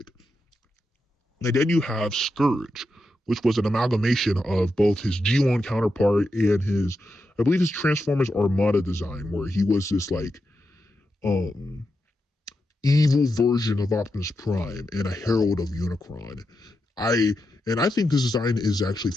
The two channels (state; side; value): normal; both; correlation 0.87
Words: And then you have Scourge, which was an amalgamation of both his G1 counterpart and I believe his Transformers Armada design, where he was this evil version of Optimus Prime and a herald of Unicron. I think this design is actually